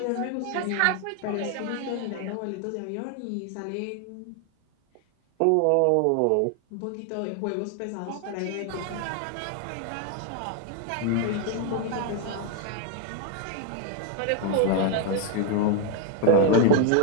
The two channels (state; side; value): different; both; correlation 0.01